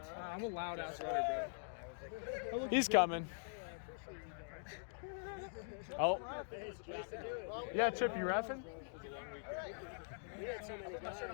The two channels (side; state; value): right; silent; digital silence